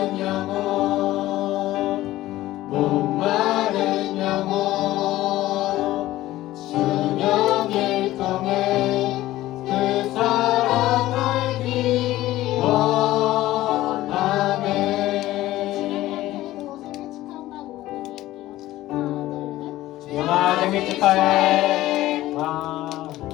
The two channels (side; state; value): right; quieter; 15.8 dB